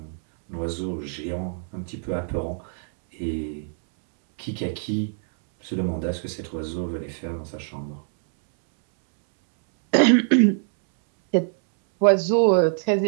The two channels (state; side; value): silent; left; 63 dB below the other